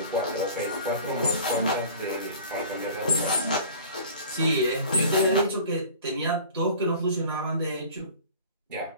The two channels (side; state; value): both; inverted; correlation -0.43